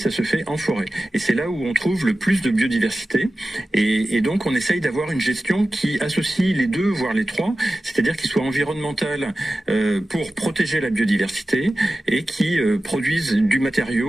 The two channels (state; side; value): normal; both; correlation 0.95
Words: se fait en forêt. Et c'est là où on trouve le plus de biodiversité. Et donc on essaye d'avoir une gestion qui associe les deux, voire les trois. C'est-à-dire qu'il soit environnemental pour protéger la biodiversité et qui produise du